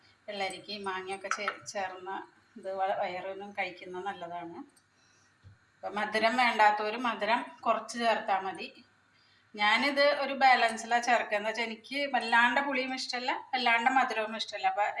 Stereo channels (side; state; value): both; identical; correlation 1.00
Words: വെള്ളരിക്ക മാങ്ങയൊക്കെ ചേർന്ന ഇത് വയറിനും കഴിക്കുന്നത് നല്ലതാണ്. അപ്പം മധുരം വേണ്ടാത്തവർ മധുരം കുറച്ച് ചേർത്താൽ മതി. ഞാനിത് ഒരു ബാലൻസിലാണ് ചേർക്കുക. എന്ന് വെച്ചാൽ എനിക്ക് വല്ലാണ്ട് പുളിയും ഇഷ്ടമല്ല, വല്ലാണ്ട് മധുരവും ഇഷ്ടമല്ല. അപ്പോൾ